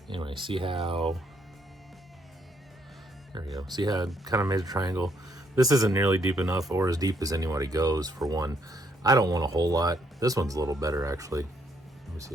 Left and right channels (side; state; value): both; normal; correlation 0.71